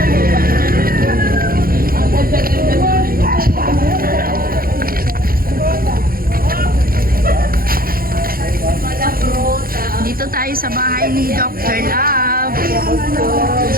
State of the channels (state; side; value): late; left; 0.42 ms